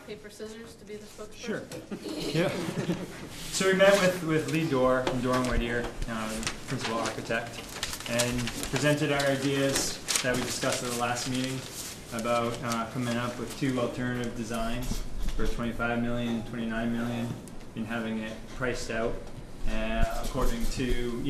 paper, scissors to be the spokesperson. Sure. Yeah. So we met with Lee Dorr from Dorr & Whittier, the principal architect, and presented our ideas that we discussed at the last meeting about coming up with 2 alternative designs for $25 million, $29 million, and having it priced out according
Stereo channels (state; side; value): identical; both; correlation 1.00